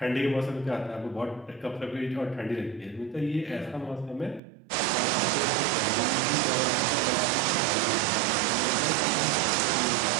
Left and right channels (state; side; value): drops out; left; at 4.4 s